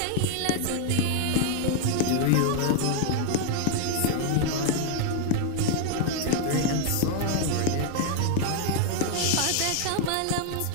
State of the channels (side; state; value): both; different; correlation 0.00